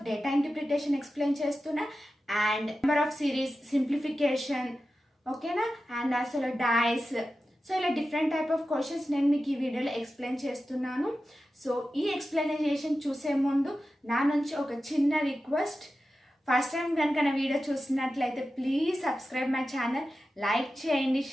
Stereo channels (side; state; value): both; normal; correlation 0.93